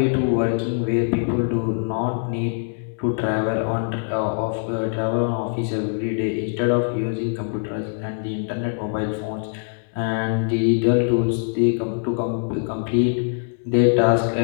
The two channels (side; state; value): right; silent; digital silence